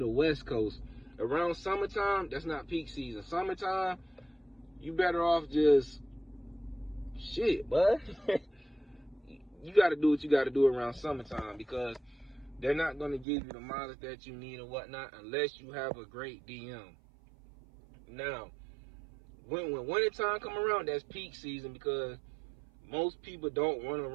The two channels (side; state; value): left; drops out; at 13.2 s